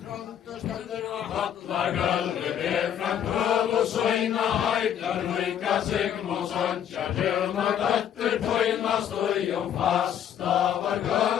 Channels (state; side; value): quieter; right; 9.5 dB